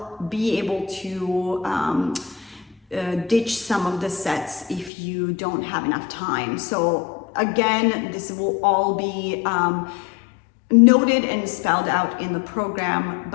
be able to ditch some of the sets if you don't have enough time. So again, this will all be noted and spelled out in the program,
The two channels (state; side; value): drops out; right; at 4.9 s